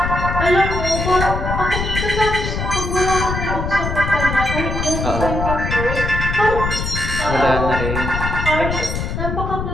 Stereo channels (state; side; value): noise; left; rumble, 3 dB below the sound